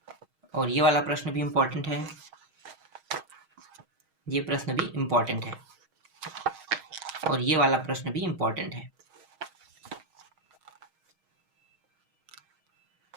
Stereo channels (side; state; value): left; late; 6.4 ms